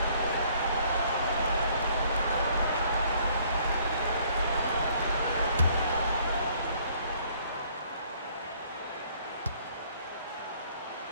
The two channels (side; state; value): both; inverted; correlation -0.61